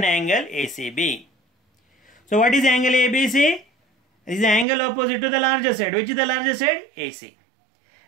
angle ACB. So what is angle ABC? It is the angle opposite to the larger side. Which is the larger side? AC.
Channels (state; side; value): drops out; left; at 4.7 s